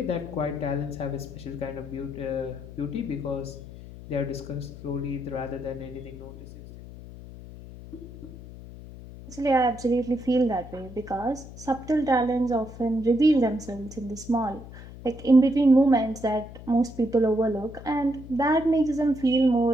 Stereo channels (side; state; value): left; noise; hum, 15 dB below the sound